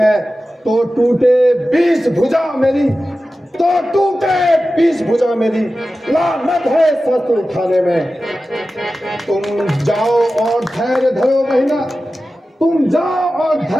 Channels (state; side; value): normal; both; correlation 0.94